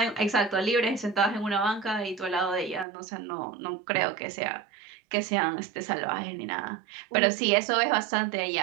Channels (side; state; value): left; drops out; at 2.9 s